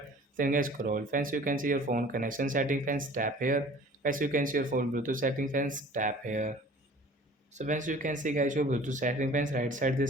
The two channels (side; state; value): both; normal; correlation 0.47